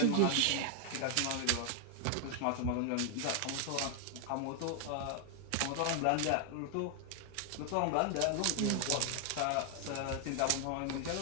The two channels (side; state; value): both; different; correlation 0.00